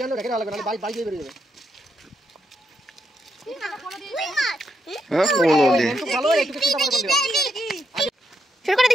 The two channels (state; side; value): normal; both; correlation 0.80